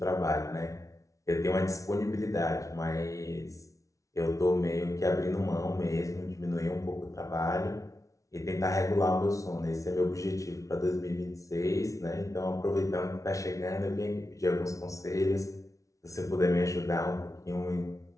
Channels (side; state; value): right; late; 0.16 ms